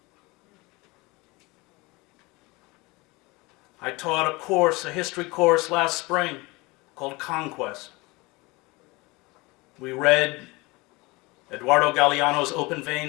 I taught a history course last spring called Conquest. We read Eduardo Galeano's Open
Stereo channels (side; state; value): right; quieter; 24.0 dB